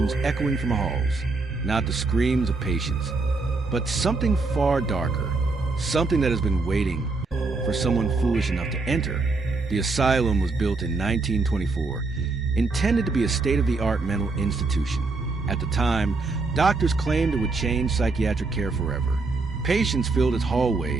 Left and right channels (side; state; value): left; quieter; 3.7 dB